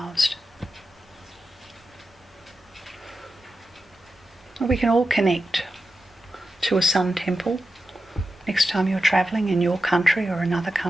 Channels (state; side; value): normal; both; correlation 0.90